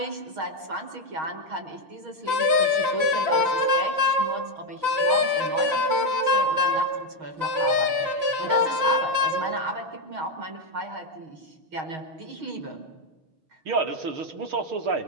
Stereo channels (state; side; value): late; left; 5.8 ms